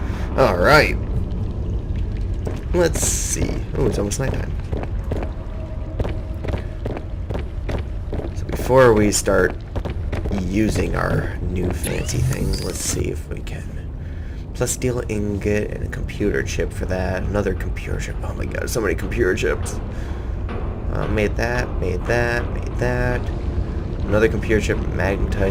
Alright. Let's see. Oh, it's almost nighttime. So before we start using our new fancy things, let's see if we can. Plus steel ingot and a computer chip for that. Another computer chip. Oh my god, so many computer chips. Made that. Another computer chip,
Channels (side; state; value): both; identical; correlation 1.00